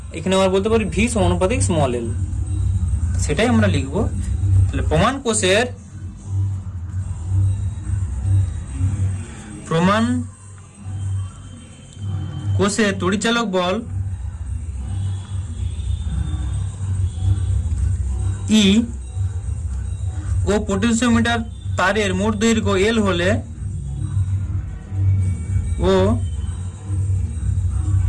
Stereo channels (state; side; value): identical; both; correlation 1.00